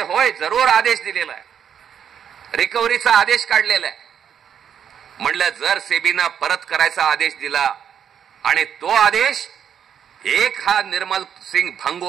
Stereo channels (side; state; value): left; quieter; 8.4 dB